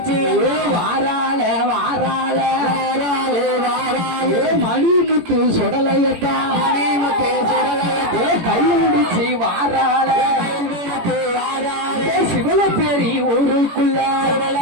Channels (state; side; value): late; left; 18 ms